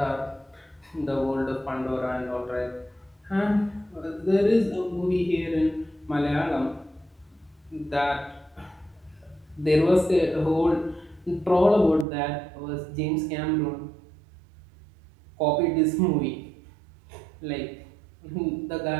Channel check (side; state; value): left; drops out; at 12.1 s